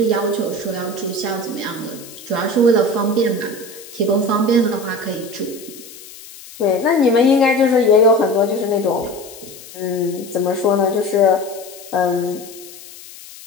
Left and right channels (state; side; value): noise; left; hiss, 17 dB below the sound